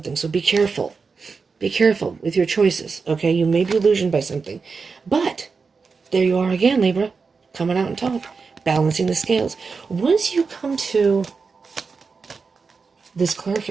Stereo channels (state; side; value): quieter; left; 4.9 dB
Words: so be careful. Be careful with your choices, okay? You may be illusioned by something. But there you are again, Libra, coming out on top, balancing the scales. Once you come to this